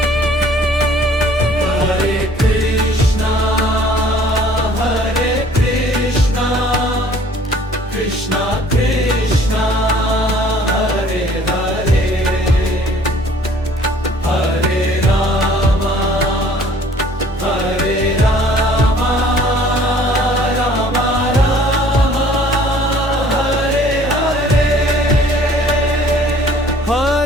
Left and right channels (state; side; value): normal; both; correlation 0.55